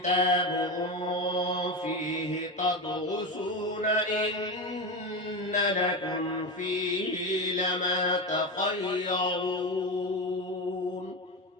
فيه تدرسون إن لكم فيه لما تخيرون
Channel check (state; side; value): normal; both; correlation 0.19